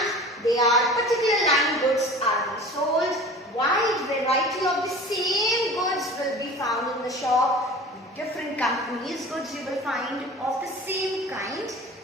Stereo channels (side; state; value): both; normal; correlation 0.40